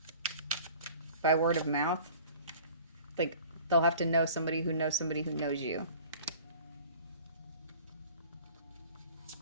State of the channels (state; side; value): inverted; both; correlation -0.46